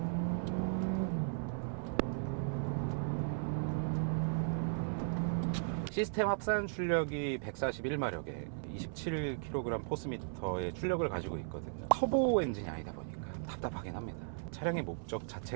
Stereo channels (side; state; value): left; silent; 53 dB below the other